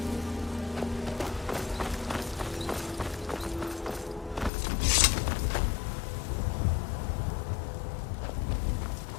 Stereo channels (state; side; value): drops out; right; at 4.5 s